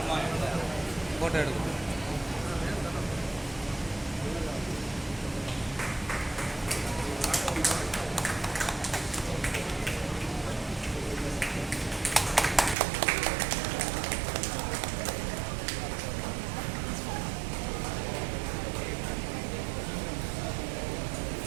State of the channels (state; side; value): drops out; left; at 12.8 s